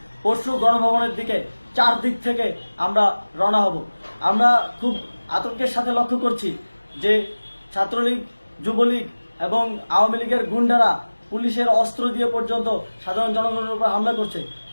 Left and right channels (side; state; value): both; inverted; correlation -1.00